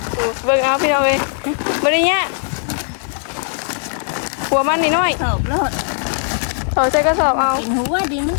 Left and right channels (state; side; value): silent; right; digital silence